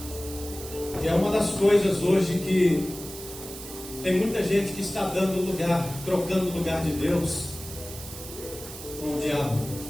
E é uma das coisas hoje que tem muita gente que está dando lugar, trocando o lugar de Deus com o diabo.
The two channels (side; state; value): right; noise; hiss, 13 dB below the sound